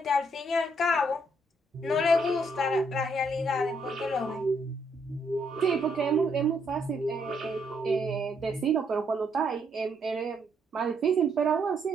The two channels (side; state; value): both; normal; correlation 0.73